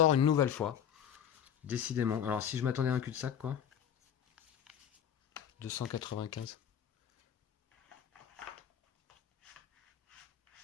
une nouvelle fois. Décidément. Alors si je m'attendais à un cul-de-sac, quoi. 295.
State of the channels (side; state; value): right; quieter; 9.1 dB